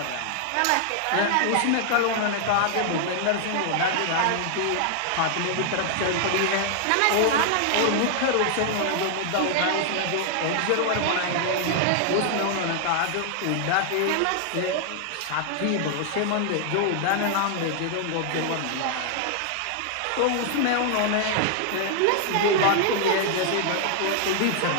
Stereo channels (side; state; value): both; different; correlation 0.00